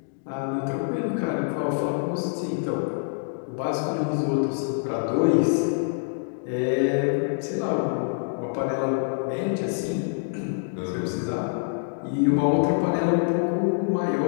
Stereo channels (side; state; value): right; silent; digital silence